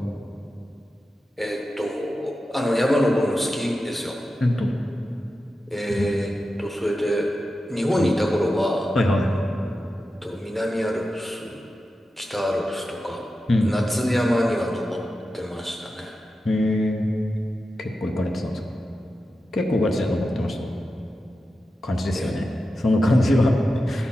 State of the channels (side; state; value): both; normal; correlation 0.91